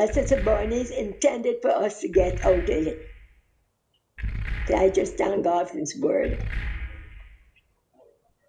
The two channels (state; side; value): identical; both; correlation 1.00